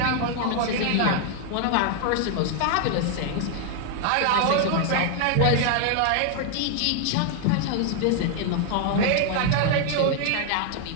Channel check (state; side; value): different; both; correlation 0.00